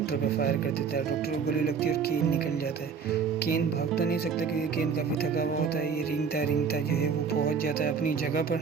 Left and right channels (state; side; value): quieter; left; 6.0 dB